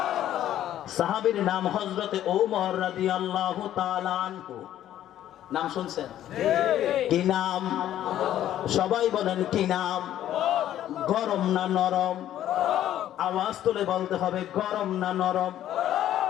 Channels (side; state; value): right; quieter; 12.0 dB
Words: সাহাবীর নাম হযরতে ওমর রাদিয়াল্লাহু তাআলা আনহু। নাম শুনছেন? কি নাম? সবাই বলেন কি নাম? গরম না নরম? আওয়াজ তুলে বলতে হবে, গরম না নরম?